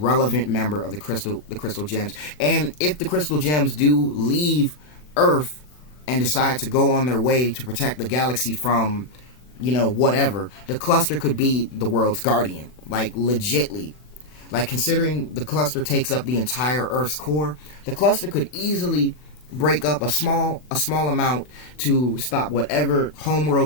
member of the Crystal Gems. And if the Crystal Gems do leave Earth and decide to go on their way to protect the galaxy from, whatever, the cluster could be the world's guardian. Like, legitly. Like, considering the cluster takes up the entire Earth's core, the cluster could easily break up a small amount to stop whatever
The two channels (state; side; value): late; right; 40 ms